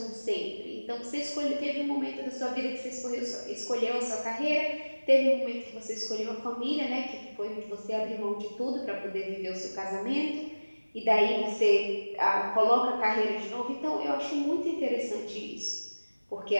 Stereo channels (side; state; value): both; inverted; correlation -1.00